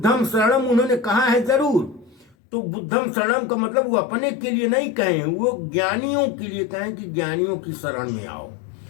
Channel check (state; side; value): drops out; right; at 2.4 s